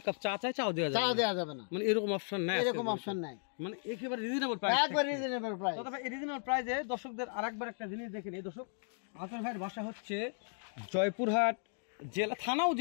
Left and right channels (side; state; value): right; silent; 54 dB below the other